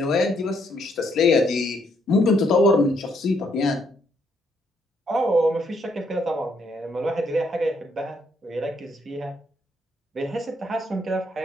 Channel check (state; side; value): normal; both; correlation 0.72